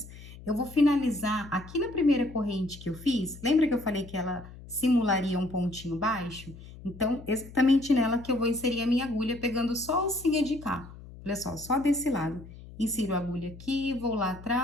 eu vou finalizar aqui na primeira corrente que eu fiz. Lembra que eu falei que ela simularia um pontinho baixo? Então, exatamente nela que eu vou inserir a minha agulha, pegando só a alcinha de cá. Olha só desse lado. Insiro a agulha aqui, vou lá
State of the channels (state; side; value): noise; left; hum, 17 dB below the sound